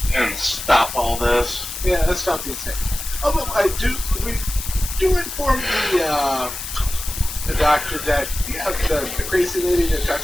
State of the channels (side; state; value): left; noise; hiss, 8 dB below the sound